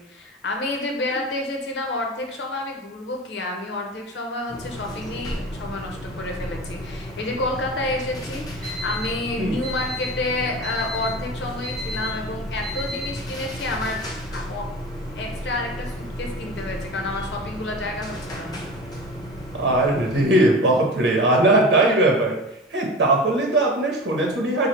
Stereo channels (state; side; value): normal; both; correlation 0.32